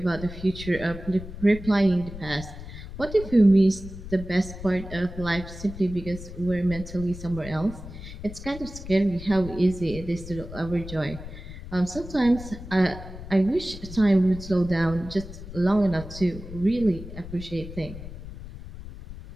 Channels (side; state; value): left; noise; rumble, 12 dB below the sound